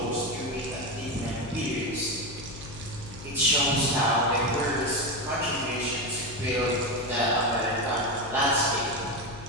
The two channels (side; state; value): left; noise; hum, 15 dB below the sound